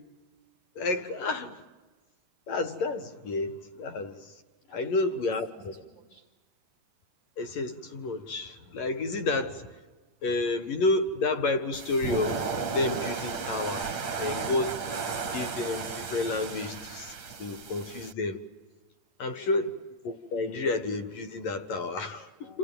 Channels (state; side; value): late; right; 8.8 ms